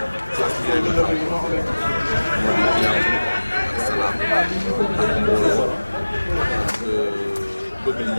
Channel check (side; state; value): both; inverted; correlation -1.00